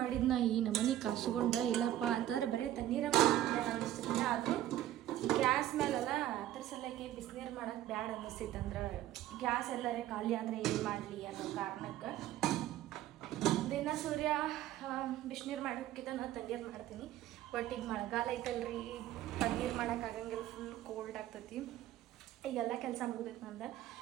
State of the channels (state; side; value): quieter; left; 13.2 dB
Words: ಮಾಡಿದ್ನ ಈ ನಮನಿ ಕಾಸುಗೊಂಡ ಇಲ್ಲಪ್ಪ ಅಂತಂದ್ರೆ ಬರೀ ತಣ್ಣೀರ ಅನ್ನಿಸ್ತಿಲ್ಲ. ಆದರೂ ಗ್ಯಾಸ್ ಮೇಲೆಲ್ಲ ಅದ್ರ ಸಲಕ್ಕೆ ಬಿಸಿನೀರು ಮಾಡೋಕ್ಕೆ ಬ್ಯಾಡ ಅನ್ನಿಸ್ತೈತೆ. ಅಂದ್ರೆ ಗ್ಯಾಸ್ ಎಲ್ಲರೇ ಖಾಲಿ ಆದರೆ ಏನು ಮಾಡಲಿ ಅನ್ನೋ ಕಾರಣಕ್ಕೆ ದಿನ ಸೂರ್ಯ ಬಿಸಿನೀರು ಮಾಡೋಕ್ಕಿಂತ ನಾನು ತಣ್ಣೀರು ಮಾಡ್ತೀನಿ. ಬಟ್ ಈಗ ಮಳೆಗಾಲ ಐತಲ್ರಿ, ತಣ್ಣೀರು ಮಾಡೋಕ್ಕಾಗಂಗಿಲ್ಲ, ಫುಲ್ ಕೋಲ್ಡ್ ಆಗ್ತೈತಿ. ಈಗೆಲ್ಲ ಕೆಲಸ ಮುಗಿದೈತೆ ನಂದು.